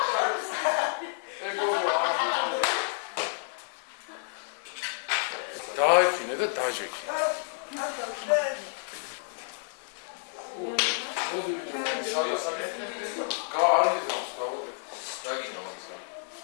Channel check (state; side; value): silent; right; 58 dB below the other